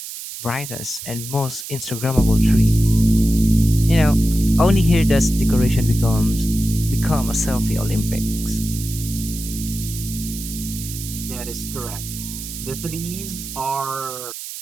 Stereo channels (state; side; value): noise; right; hiss, 10 dB below the sound